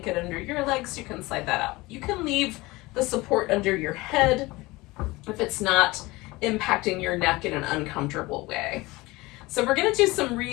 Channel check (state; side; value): quieter; right; 21.5 dB